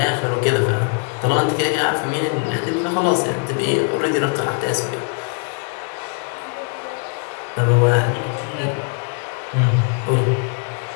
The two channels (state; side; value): quieter; right; 38.2 dB